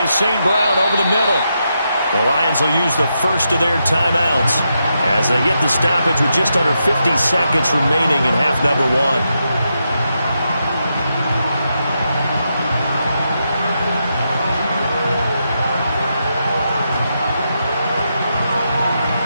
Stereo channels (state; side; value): inverted; both; correlation -0.84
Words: St. Brown over the middle. The Lions will use the first of their timeouts as they get the stoppage with just under 50 seconds remaining in half number one.